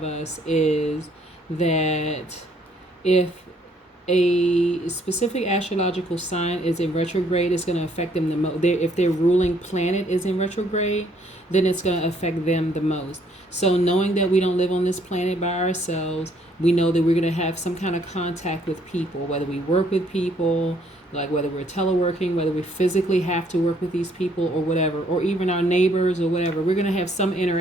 us is that if a specific astrological sign is in retrograde, it's going to affect them the most. If their ruling planet is in retrograde, then it's going to affect them the most. So knowing that we don't live on this planet by ourselves, we know that we're going to have some kind of contact with people, whether we work with people, like whether we're teleworking, whether we physically have to work with these people or whatever, or even our neighbors or whatever, we're going to have some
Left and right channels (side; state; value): both; normal; correlation 0.66